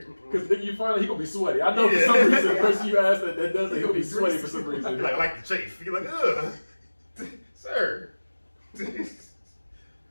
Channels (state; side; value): inverted; both; correlation -1.00